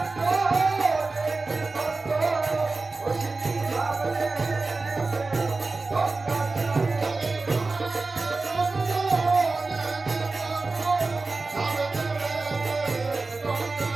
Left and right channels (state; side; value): quieter; left; 3.6 dB